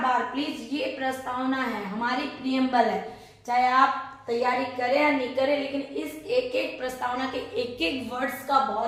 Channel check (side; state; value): both; identical; correlation 1.00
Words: बार प्लीज, ये प्रस्तावना है, हमारी प्रियम्बल है, चाहे आप तैयारी करें या नहीं करें, लेकिन इस एक एक प्रस्तावना के एक एक वर्ड्स का